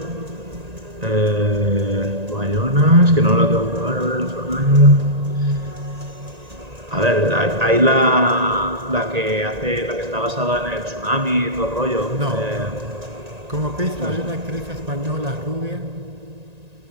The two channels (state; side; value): late; left; 1.9 ms